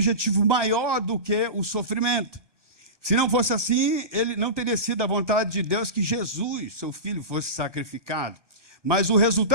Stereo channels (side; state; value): left; late; 1.2 ms